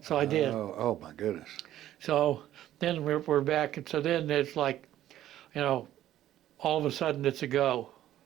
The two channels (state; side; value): quieter; left; 12.8 dB